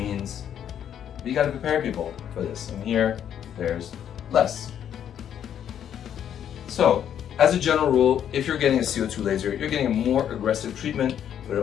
we got to prepare people for this. And here, there's less. So, as a general rule, if you're getting a CO2 laser, you're getting a more aggressive treatment, but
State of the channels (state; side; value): quieter; right; 9.5 dB